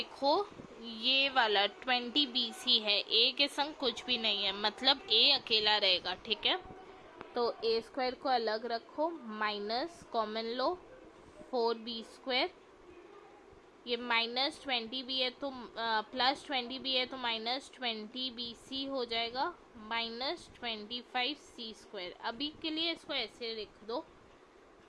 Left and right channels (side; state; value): both; identical; correlation 1.00